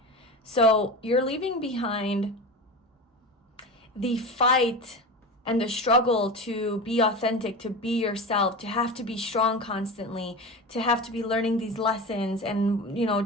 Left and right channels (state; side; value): normal; both; correlation 0.28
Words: So you're leaving behind the fight and the struggle to be authentic, to be yourself, to have to be strong constantly, to have to be learning these lessons and,